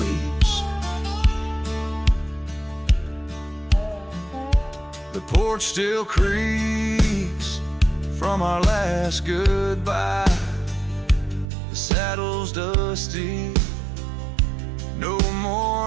The porch still creaks from our last goodbye. The saddle's dusty, no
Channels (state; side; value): drops out; left; at 11.5 s